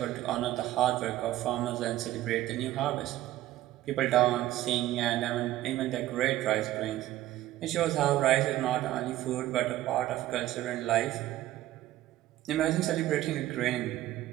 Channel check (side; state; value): left; quieter; 14.8 dB